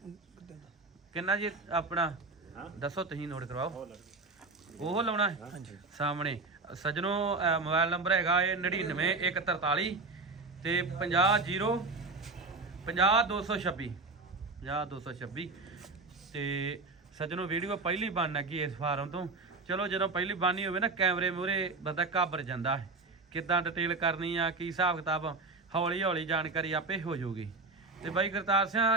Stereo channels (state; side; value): quieter; left; 3.4 dB